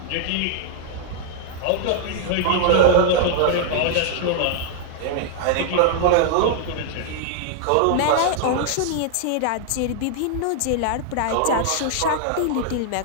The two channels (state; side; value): different; both; correlation 0.00